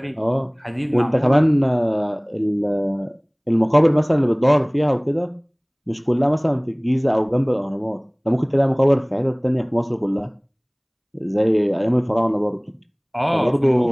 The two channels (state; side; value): identical; both; correlation 1.00